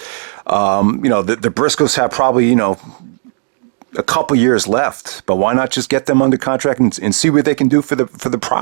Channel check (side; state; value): left; silent; 70 dB below the other